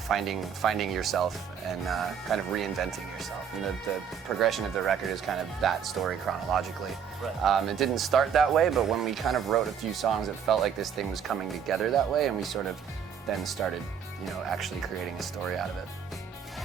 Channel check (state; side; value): quieter; left; 7.5 dB